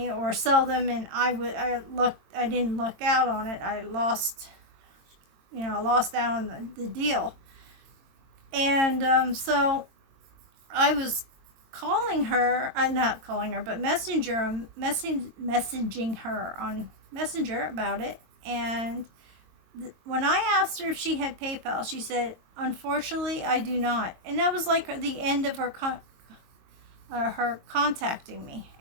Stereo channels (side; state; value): left; late; 22 ms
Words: or sell them and I didn't luck out on it. I lost out on the deal. And so I was calling her, not calling her, but messaging her on Messenger about it. And when I asked her if she had PayPal, she said, unfortunately, I do not. And that was like the end of her contacting me.